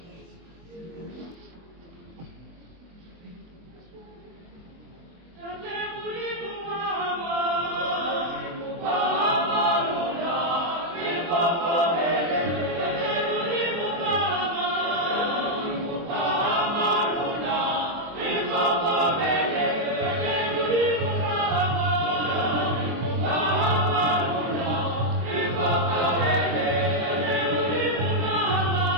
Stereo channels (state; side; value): late; left; 23 ms